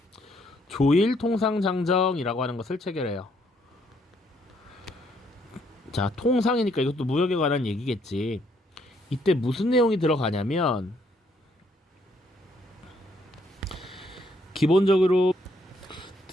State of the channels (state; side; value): normal; both; correlation 0.70